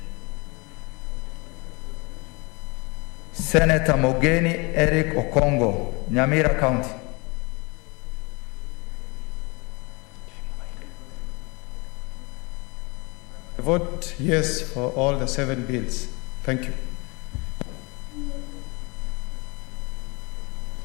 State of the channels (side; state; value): right; quieter; 28.0 dB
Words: Senator Mogeni Eric Okongo, Nyamira County. I vote yes for all the 7 bills. Thank you.